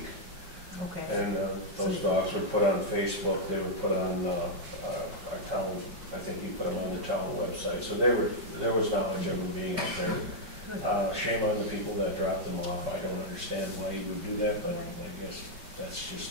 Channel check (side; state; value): left; late; 5.3 ms